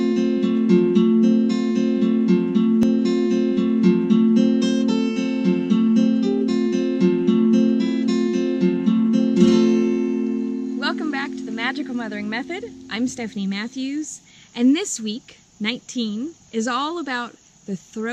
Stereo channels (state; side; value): identical; both; correlation 1.00